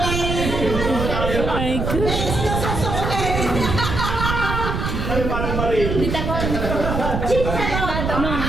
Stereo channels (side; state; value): right; noise; rumble, 2 dB below the sound